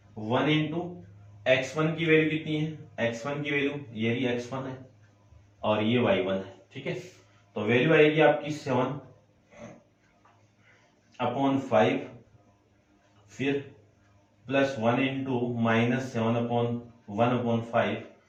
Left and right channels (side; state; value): both; identical; correlation 1.00